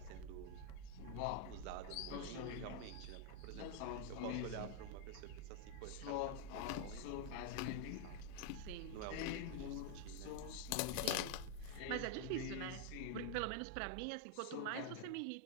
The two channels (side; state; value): both; different; correlation 0.00